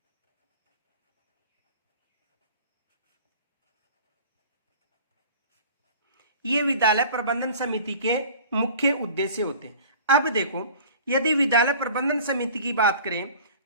ये विद्यालय प्रबंधन समिति के मुख्य उद्देश्य होते हैं। अब देखो, यदि विद्यालय प्रबंधन समिति की बात करें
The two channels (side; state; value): both; inverted; correlation -0.43